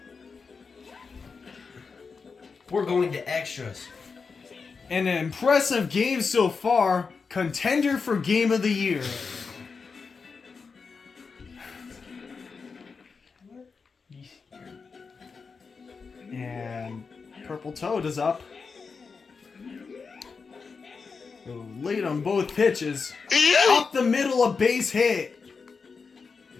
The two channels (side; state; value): right; quieter; 5.0 dB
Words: We're going to extras. An impressive game so far. Contender for Game of the Year. And Purple Toad is up. Late on both pitches. Up the middle, a base hit.